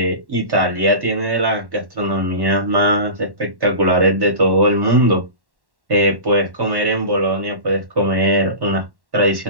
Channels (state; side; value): late; left; 1.1 ms